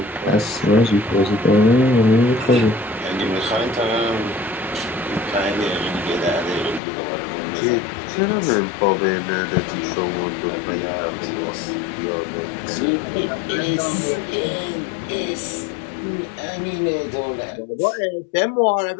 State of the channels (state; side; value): drops out; right; at 6.8 s